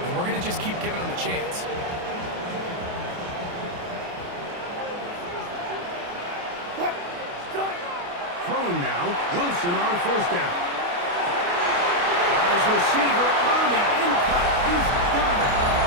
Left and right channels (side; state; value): left; late; 28 ms